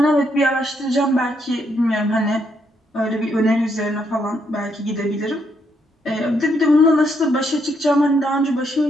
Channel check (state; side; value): normal; both; correlation 0.75